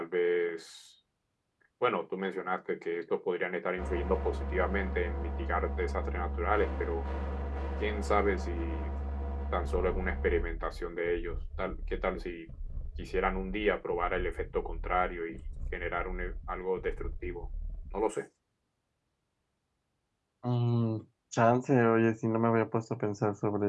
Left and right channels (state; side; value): identical; both; correlation 1.00